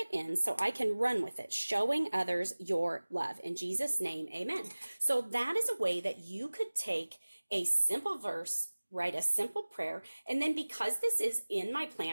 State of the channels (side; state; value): both; inverted; correlation -1.00